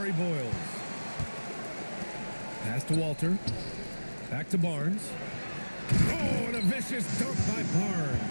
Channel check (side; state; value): both; inverted; correlation -1.00